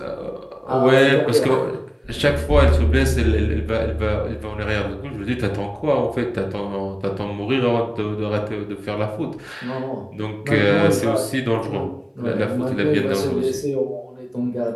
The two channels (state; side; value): identical; both; correlation 1.00